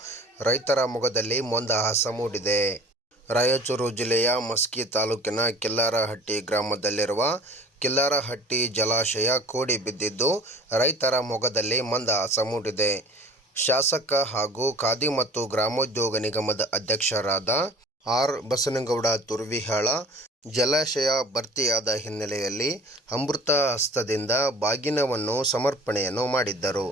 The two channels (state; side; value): normal; both; correlation 0.45